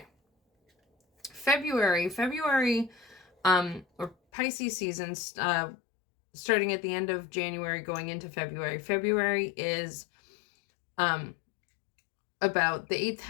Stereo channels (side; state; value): right; drops out; at 4.2 s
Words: February, or Pisces season, starting at the end of January, going into February. February is about the 8th